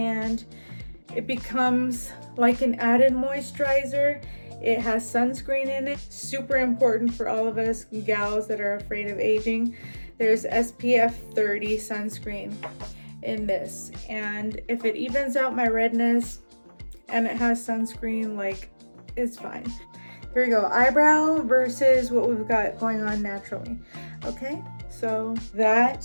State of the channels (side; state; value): both; inverted; correlation -1.00